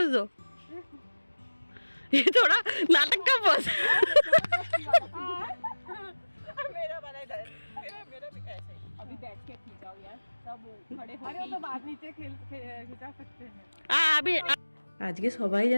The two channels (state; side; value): inverted; both; correlation -1.00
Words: दो, ये थोड़ा नाटक का बोल। मेरा वाला इधर, मेरा भी ऐसे ही। अभी बैठ के खींचाओ यार, सब खड़े हो। अरे वो तो बाद नीचे खिंचा सकते हैं। अभी আজকে সবাই